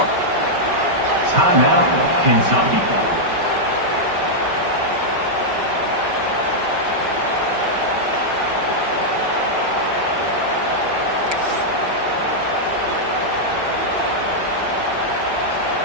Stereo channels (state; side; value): late; left; 5.2 ms